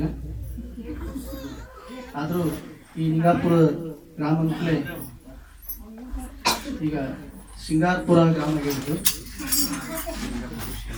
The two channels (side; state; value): both; identical; correlation 1.00